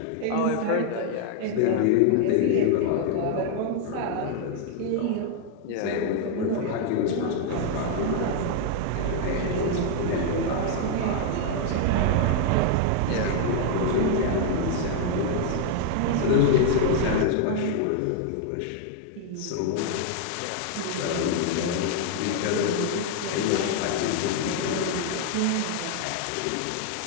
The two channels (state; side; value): different; both; correlation 0.00